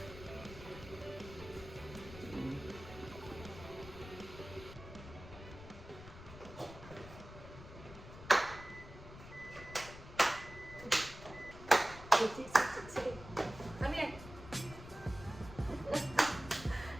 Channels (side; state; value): left; noise; rumble, 14 dB below the sound